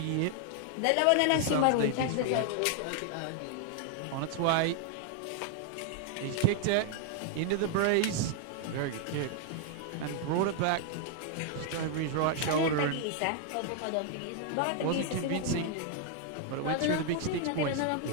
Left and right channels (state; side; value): different; both; correlation 0.00